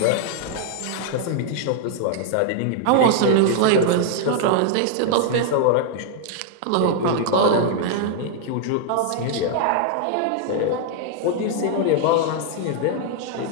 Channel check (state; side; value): different; both; correlation 0.00